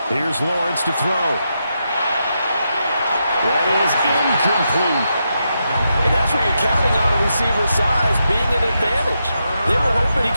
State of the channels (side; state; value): both; inverted; correlation -0.84